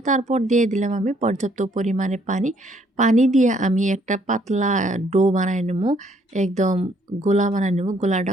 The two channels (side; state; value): both; normal; correlation 0.66